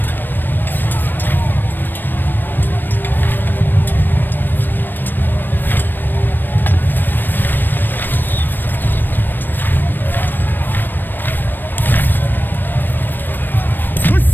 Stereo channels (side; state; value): right; late; 0.093 ms